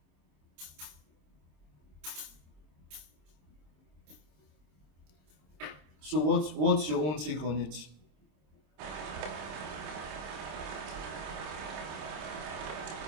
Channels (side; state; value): left; late; 26 ms